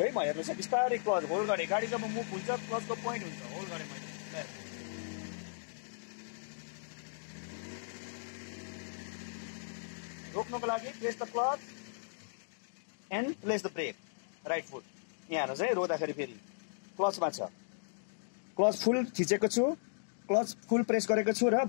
है म, हेर्नुहोस् है, बिस्तारै क्लच होल्ड गरेँ। गाडी जब मुभ हुन्छ क्लचको पोइन्ट हुन्छ, होल्ड गरेँ मैले। रोक्नको लागि press the clutch and place the brake, right foot. यहाँ हेर्नुहोस् है, रोक्दाखेरि फेरि क्लचमा छ, क्लच फुल थिचेको छु, क्लच फुल प्रेस गरेको छु र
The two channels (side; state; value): right; silent; digital silence